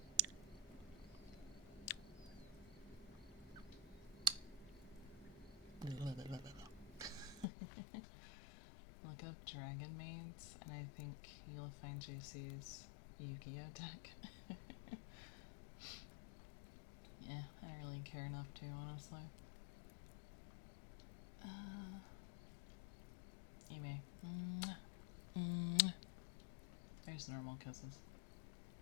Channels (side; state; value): right; drops out; at 7.5 s